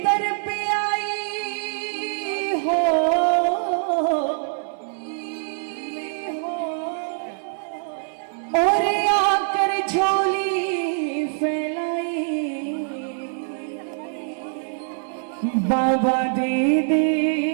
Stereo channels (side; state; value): left; silent; digital silence